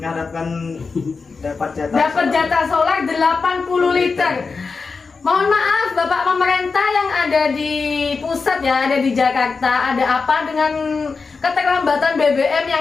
dapat jatah solar 80 liter. Mohon maaf Bapak pemerintah yang ada di pusat ya, ada di Jakarta, ada apa dengan keterlambatan BBM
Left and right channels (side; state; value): right; quieter; 4.6 dB